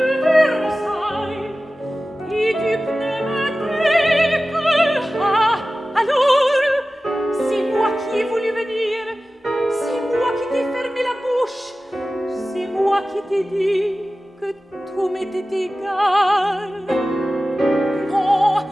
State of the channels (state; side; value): normal; both; correlation 0.95